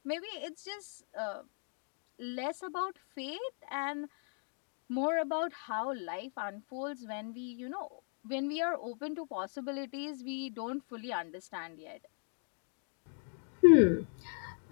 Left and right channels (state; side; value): silent; right; 53 dB below the other